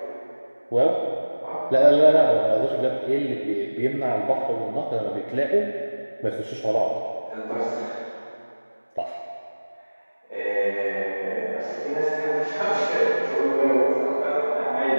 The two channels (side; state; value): both; inverted; correlation -1.00